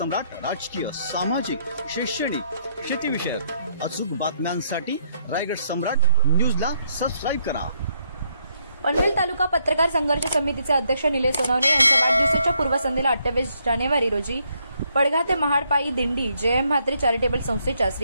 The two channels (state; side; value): inverted; both; correlation -0.73